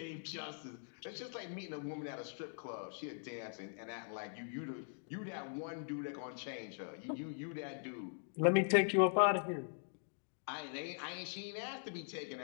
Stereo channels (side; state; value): right; silent; digital silence